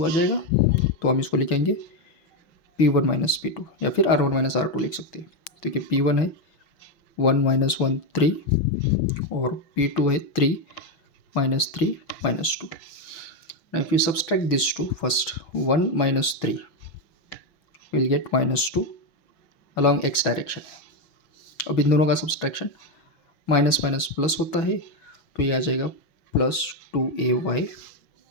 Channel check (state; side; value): late; right; 6.2 ms